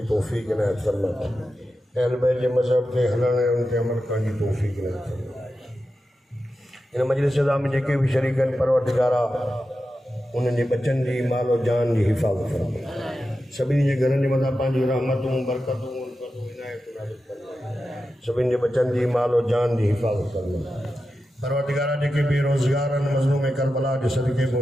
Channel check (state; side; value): normal; both; correlation 0.91